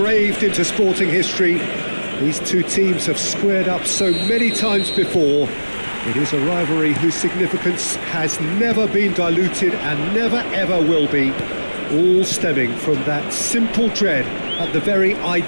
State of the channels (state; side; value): inverted; both; correlation -1.00